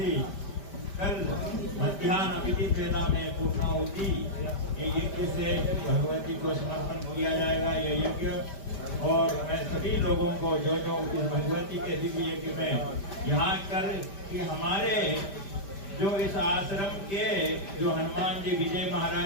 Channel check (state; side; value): late; right; 5.1 ms